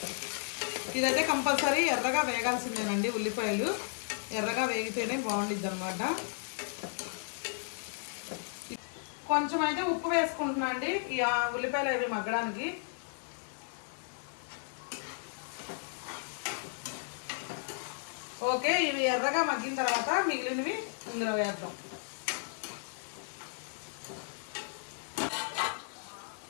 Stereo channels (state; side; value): silent; right; 55 dB below the other